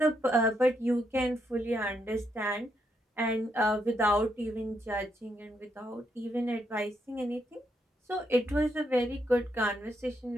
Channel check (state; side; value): normal; both; correlation 0.78